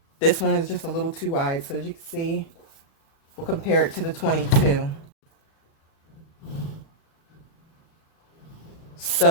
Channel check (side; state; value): right; late; 36 ms